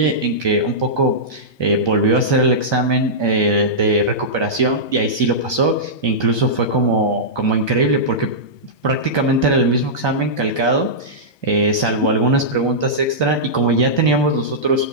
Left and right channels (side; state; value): right; late; 1.2 ms